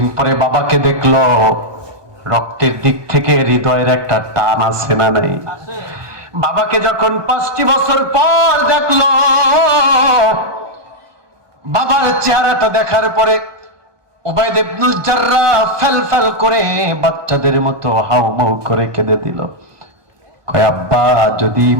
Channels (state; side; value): late; left; 1.2 ms